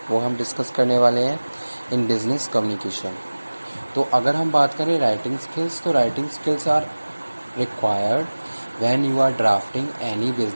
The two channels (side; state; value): both; inverted; correlation -1.00